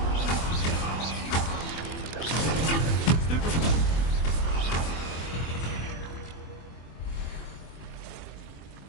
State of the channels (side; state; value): right; late; 24 ms